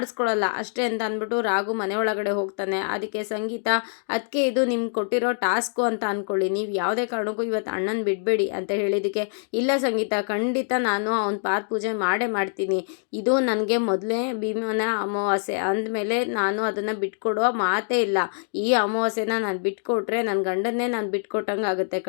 ಅಷ್ಟೇ ಅಂತ ಅಂದ್ಬಿಟ್ಟು ರಾಘು ಮನೆ ಒಳಗಡೆ ಹೋಗ್ತಾನೆ. ಅದಕ್ಕೆ ಸಂಗೀತ ಅದಕ್ಕೆ ಇದು ನಿಮ್ಗೆ ಕೊಟ್ಟಿರೋ ಟಾಸ್ಕು ಅಂತ ಅಂದ್ಕೊಳ್ಳಿ, ನೀವು ಯಾವುದೇ ಕಾರಣಕ್ಕೂ ಇವತ್ತು ಅಣ್ಣನ ಬಿಡಬೇಡಿ ಅಂತ ಹೇಳಿದ್ದಕ್ಕೆ ಇಲ್ಲ ಸಂಗೀತ ಖಂಡಿತ ನಾನು ಅವ್ನ ಪಾದ ಪೂಜೆ ಮಾಡೇ ಮಾಡ್ತೀನಿ, ಇದು ನನಗೆ ಮೊದಲೇ ಭೀಮನ ಅಮಾವಾಸ್ಯೆ ಅಂದಮೇಲೆ ನಾನು ಅದನ್ನು ಬಿಟ್ಕೊಡುವ ಮಾತೇ ಇಲ್ಲ, ಈ ಅಮಾವಾಸ್ಯೆನ ನಾನು ಬಿಟ್ಕೊಟ್ರೆ ನನ್ನ ಗಂಡನ್ನೇ ನಾನು ಬಿಟ್ಕೊಟ್ಟಂಗೆ ಆಗುತ್ತೆ,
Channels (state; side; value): silent; right; digital silence